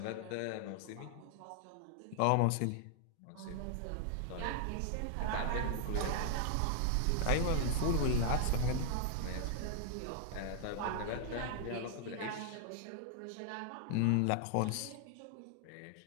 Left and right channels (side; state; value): both; different; correlation -0.01